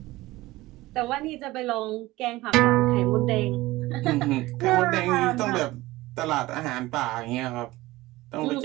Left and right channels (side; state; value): left; quieter; 18.7 dB